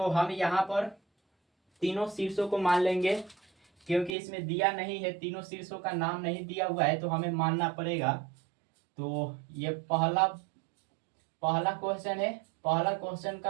हम यहाँ पर तीनों शीर्षों को मान लेंगे क्योंकि इसमें दिया नहीं है, तीनों शीर्षों का नाम नहीं दिया हुआ है तो हमें मानना पड़ेगा। तो ये पहला पहला क्वेश्चन है, पहला क्वेश्चन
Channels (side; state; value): left; drops out; at 4.2 s